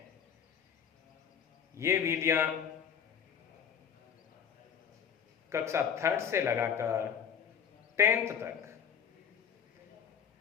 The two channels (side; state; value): right; quieter; 7.9 dB